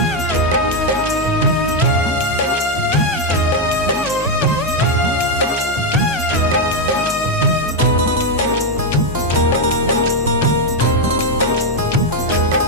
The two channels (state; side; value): normal; both; correlation 0.03